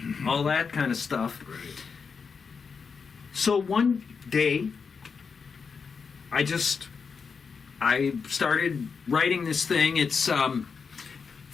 all that kind of stuff. Right. So one day, I started writing this thing. It's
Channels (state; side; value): quieter; right; 5.5 dB